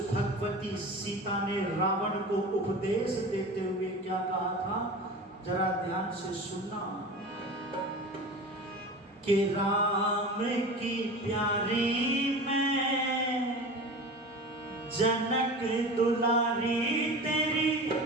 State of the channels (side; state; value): both; normal; correlation 0.33